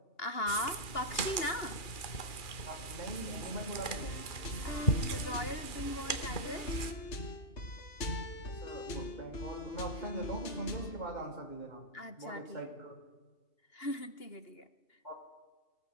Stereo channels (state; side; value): late; right; 2.8 ms